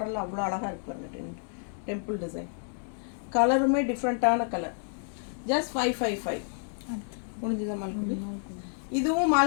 அவ்வளோ அழகாக இருக்கு பாருங்க டெம்பிள் டிசைன். கலருமே டிஃப்ரெண்ட்டான கலர். ஜஸ்ட் 555. முடிஞ்சுதான் மால்குடி. இதுவும்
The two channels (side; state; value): right; silent; digital silence